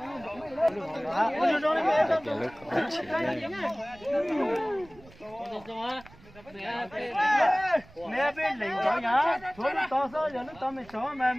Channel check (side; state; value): right; noise; rumble, 23 dB below the sound